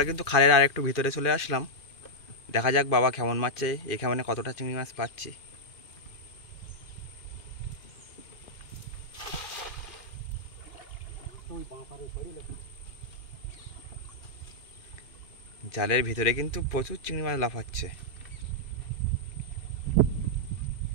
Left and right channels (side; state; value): right; late; 2.5 ms